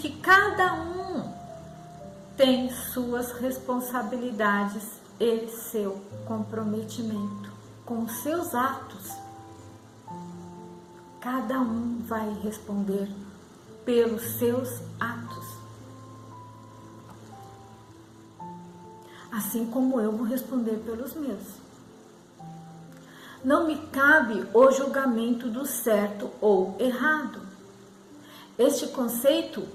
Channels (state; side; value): identical; both; correlation 1.00